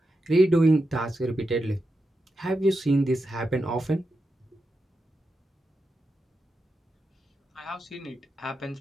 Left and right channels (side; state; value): both; normal; correlation 0.88